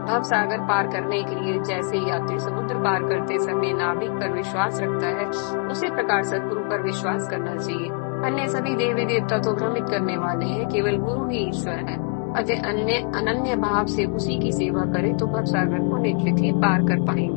भव सागर पार करने के लिए जैसे यात्री समुद्र पार करते समय नाविक पर विश्वास रखता है, उसी प्रकार सदगुरु पर विश्वास करना चाहिए। अन्य सभी देवी देवता तो भ्रमित करने वाले हैं, केवल गुरु ही ईश्वर है। अतः अनन्य भाव से उसी की सेवा करें तो भव सागर को निश्चित ही पार कर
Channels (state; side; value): quieter; right; 36.5 dB